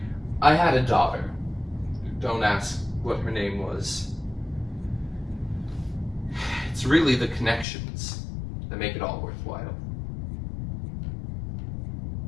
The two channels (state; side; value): drops out; right; at 7.7 s